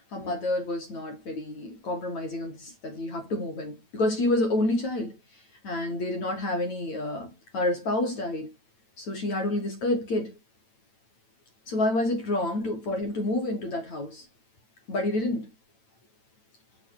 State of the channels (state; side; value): late; right; 9.0 ms